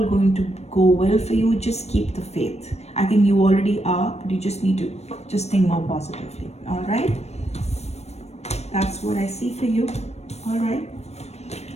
going to go well for you. Just keep the faith. I think you already are, but you just need to just think more positively. All right, that's what I see for you. All right,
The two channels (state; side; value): late; right; 0.31 ms